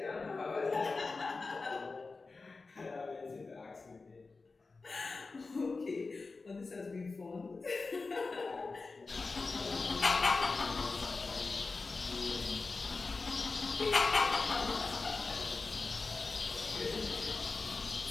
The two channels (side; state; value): right; quieter; 4.0 dB